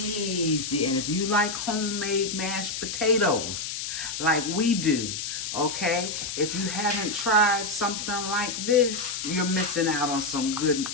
And if you like homemade mashed potatoes like we do, okay, if you haven't tried something like this, you're missing out on some good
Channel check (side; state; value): left; noise; hiss, 5 dB below the sound